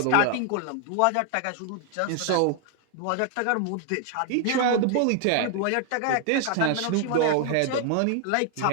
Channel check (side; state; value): both; different; correlation 0.00